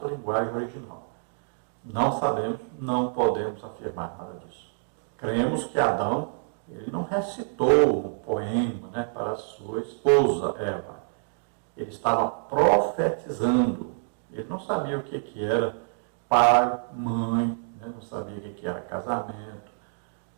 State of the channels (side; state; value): left; silent; digital silence